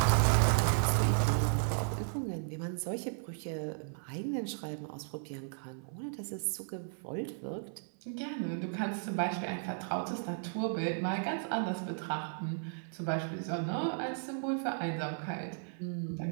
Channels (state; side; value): silent; left; 55 dB below the other